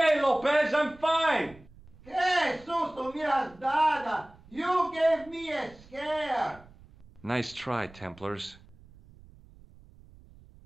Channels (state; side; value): noise; right; rumble, 23 dB below the sound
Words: Lopez, I'm fine! Que susto me has dado! You gave me a scare! Nice try, Templars.